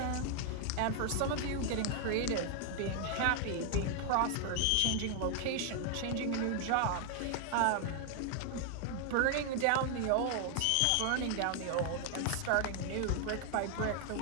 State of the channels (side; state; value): both; different; correlation 0.00